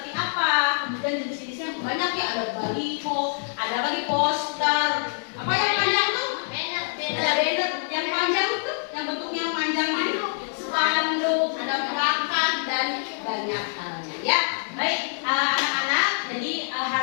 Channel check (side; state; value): right; silent; 61 dB below the other